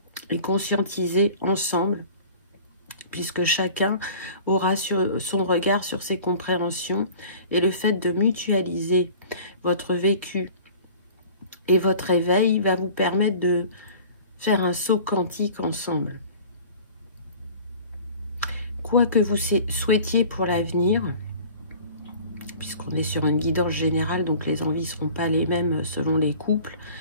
Et conscientiser ensemble, puisque chacun aura son regard sur ses compréhensions, et le fait de mutualiser votre vécu et votre éveil va vous permettre de faire un saut quantique ensemble. Quoi que vous souhaitiez pour l'avenir, puisqu'on est sur une guidance générale, donc les envies ne seront pas les mêmes selon les couples,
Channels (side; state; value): both; inverted; correlation -0.44